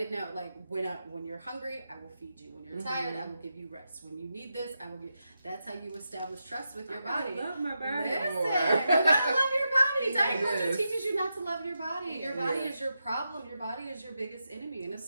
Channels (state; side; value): inverted; both; correlation -0.87